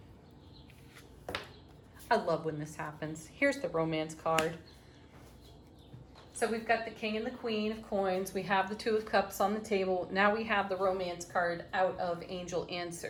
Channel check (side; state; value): both; identical; correlation 1.00